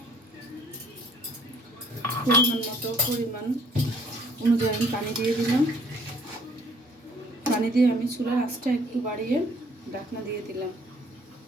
পরিমাণ অনুযায়ী আমি পানি দিয়ে দিলাম। পানি দিয়ে আমি চুলার আঁচটা একটু বাড়িয়ে ঢাকনা দিয়ে দিলাম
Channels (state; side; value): normal; both; correlation 0.59